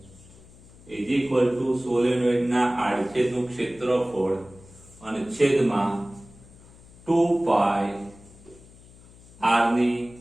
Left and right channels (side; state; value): left; noise; hum, 23 dB below the sound